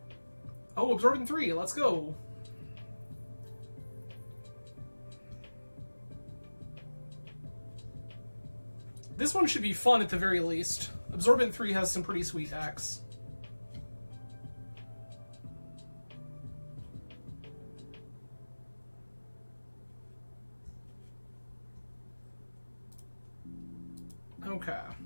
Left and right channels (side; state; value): both; inverted; correlation -1.00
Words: Oh, Absorbing 3, let's go. This one should be fun at the very least. Absorbent 3 has some pretty sweet decks. Okay.